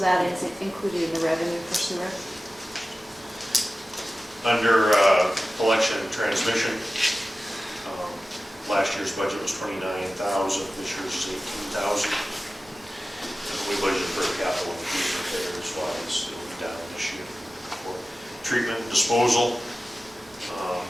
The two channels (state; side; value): normal; both; correlation 0.96